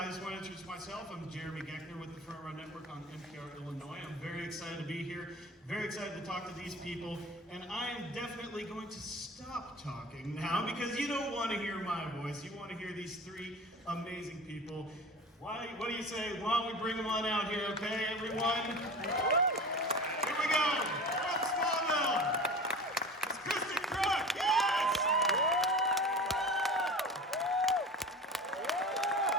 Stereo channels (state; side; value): normal; both; correlation 0.35